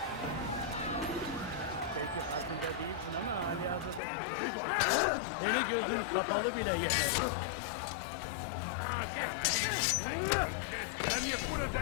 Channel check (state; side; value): drops out; right; at 4.0 s